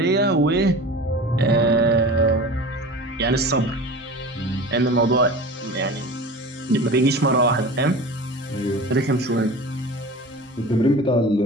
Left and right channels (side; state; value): both; normal; correlation 0.36